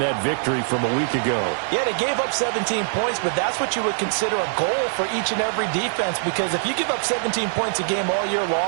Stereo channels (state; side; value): silent; left; digital silence